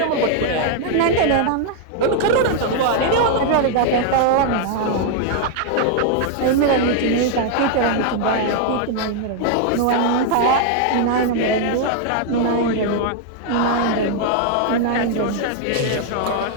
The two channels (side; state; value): both; different; correlation 0.00